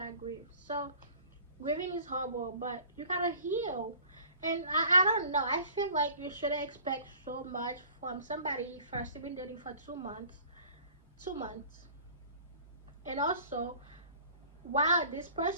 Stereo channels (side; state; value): both; inverted; correlation -0.48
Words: grief. So grieving is horrible, but you gotta heal. And I don't know. I feel like you shouldn't expect so much from somebody first you've been dating for 2 months. 2 months. And also, while this